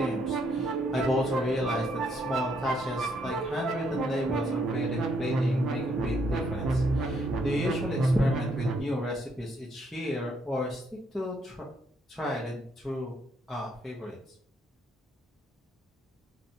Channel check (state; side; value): normal; both; correlation 0.72